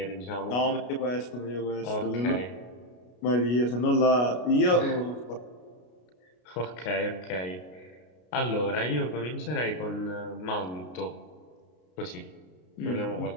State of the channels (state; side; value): late; right; 33 ms